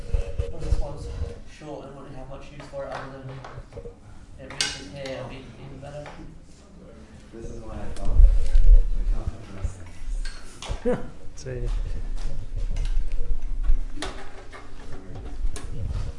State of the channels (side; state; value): both; identical; correlation 1.00